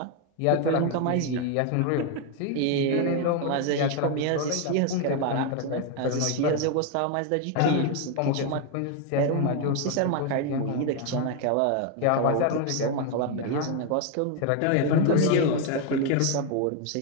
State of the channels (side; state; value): both; different; correlation 0.01